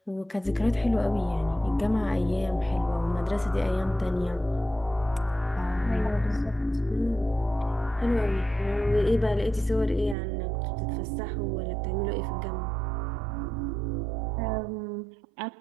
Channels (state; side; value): drops out; left; at 10.2 s